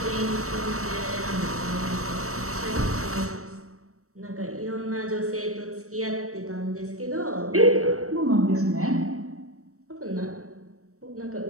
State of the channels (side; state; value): left; late; 0.65 ms